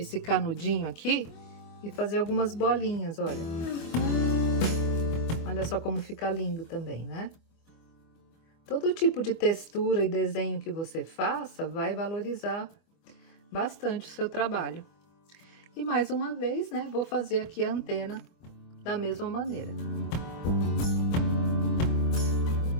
canudinho aqui e fazer algumas bolinhas, olha. Olha só como fica lindo também, né? Todo tipo de textura e desenho que você faça vai valorizar bastante o seu trabalho. E mais uma vez, né, vou fazer aqui a antena da mesma maneira.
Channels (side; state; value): right; late; 24 ms